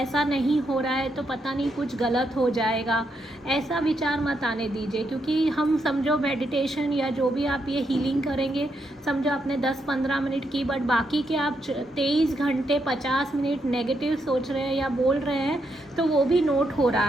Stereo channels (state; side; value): normal; both; correlation 0.79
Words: नहीं हो रहा है तो पता नहीं कुछ गलत हो जाएगा, ऐसा विचार मत आने दीजिए। क्योंकि हम समझो मेडिटेशन या जो भी आप ये हीलिंग करेंगे, समझो आपने 10-15 मिनट की, बट बाकी के आप 23 घंटे 50 मिनट नेगेटिव सोच रहे हैं या बोल रहे हैं, तो वो भी नोट हो